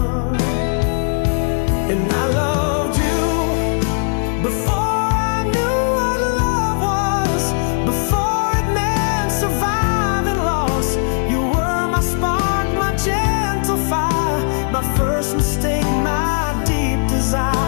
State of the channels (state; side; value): silent; right; 67 dB below the other